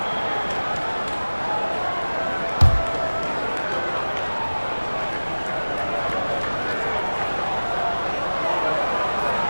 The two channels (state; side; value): inverted; both; correlation -1.00